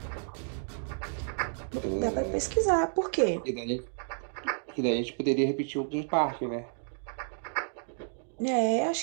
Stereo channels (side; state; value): left; silent; digital silence